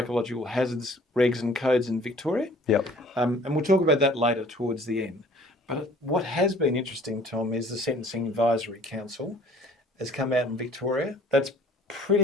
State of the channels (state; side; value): normal; both; correlation 0.53